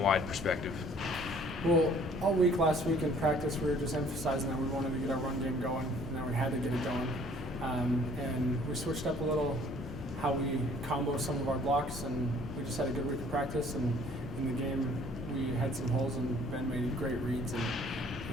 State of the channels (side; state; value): both; normal; correlation 0.56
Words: perspective? Well, all week last week in practice, we were just emphasizing that we wanted to get our run game going, and that we had to get it going. And we switched up a little how we combo some of our blocks, and we just had a good week of practice. And in the game, we had some holes, and Ben made great reads, and